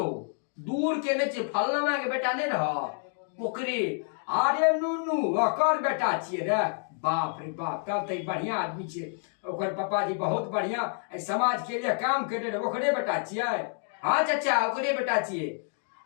दूर के नहीं छियै, फलना के बेटा नहीं रह ओकरे। अरे नूनू ओकर बेटा छियै रे। बाप रे बाप, तब तो बढ़िया आदमी छियै। ओकर पापा जी बहुत बढ़िया समाज के लिए काम करे रहे, ओकरे बेटा छियै। हाँ चाचा ओकरे बेटा छियै।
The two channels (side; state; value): right; silent; 58 dB below the other